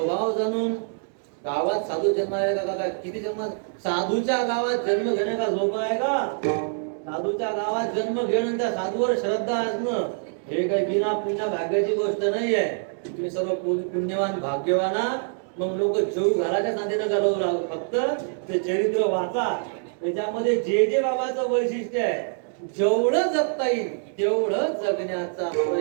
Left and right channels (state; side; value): silent; left; digital silence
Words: जाणून गावात साधू जन्माला का काय, किती जन्म साधूच्या गावात जन्म घेणे का झोप आहे का. साधूच्या गावात जन्म घेणं, त्या साधूवर श्रद्धा असणं हे काही बिना पुण्य भाग्याची गोष्ट नाही आहे. तुम्ही सर्व पुण्यवान भाग्यवान, मग लोक जेव घराच्या नांदीनं घालवू लागू. फक्त ते चरित्र वाचा, त्याच्यामध्ये जे जे बाबाचं वैशिष्ट्य आहे जेवढं जगता येईल तेवढं जगण्याचा